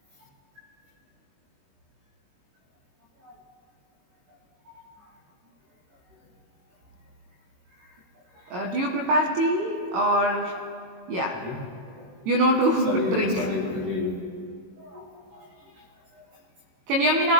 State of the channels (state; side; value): late; left; 21 ms